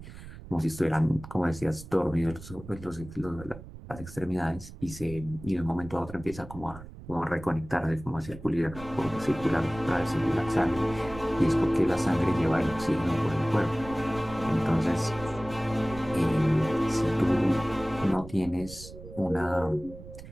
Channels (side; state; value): right; noise; rumble, 15 dB below the sound